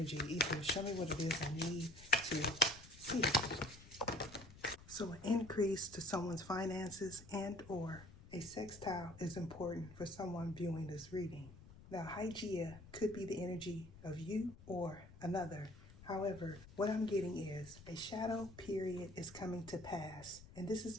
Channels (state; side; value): noise; left; rumble, 18 dB below the sound